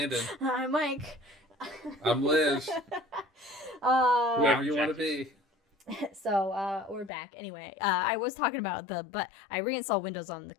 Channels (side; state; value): right; drops out; at 7.1 s